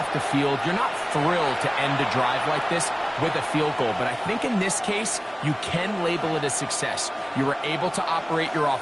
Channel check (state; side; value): identical; both; correlation 1.00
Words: the field, you're not thrilled to end a drive like this with a field goal. But I think in this case, you can label it a success. You were able to operate your